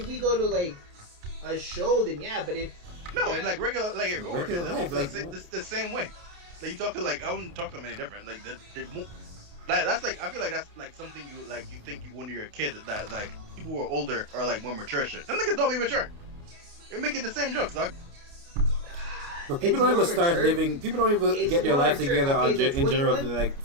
to like a show, then yeah. But if no, in like regular life, like the same way. Like you talk to I wouldn't talk to them any different. Like that's like I feel like that's like something you think when you're a kid that like people who are older are like more mature shit. Them niggas don't be mature. You're making the same jokes, dog. But people don't even start living. People don't even get their life together in general to like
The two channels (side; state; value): left; late; 29 ms